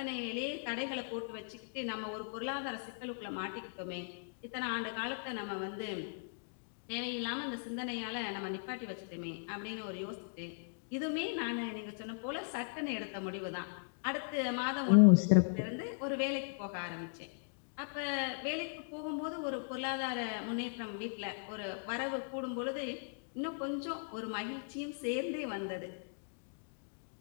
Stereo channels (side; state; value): right; silent; digital silence